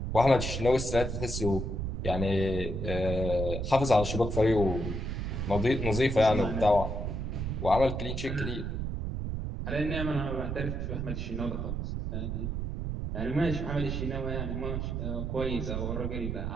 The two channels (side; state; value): right; noise; rumble, 3 dB below the sound